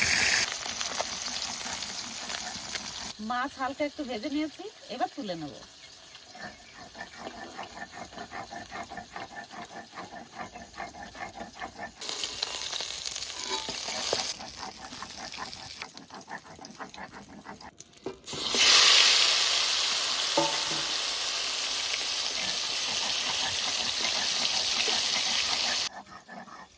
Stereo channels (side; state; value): both; identical; correlation 1.00